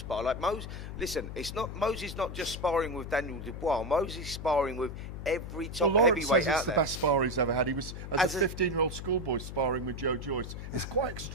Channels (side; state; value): left; noise; hum, 8 dB below the sound